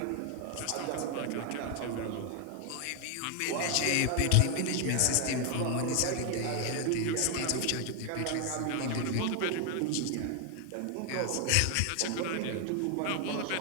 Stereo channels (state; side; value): different; both; correlation 0.00